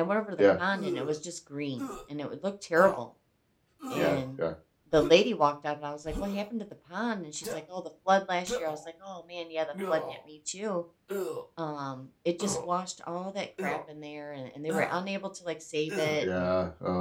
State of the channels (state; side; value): identical; both; correlation 1.00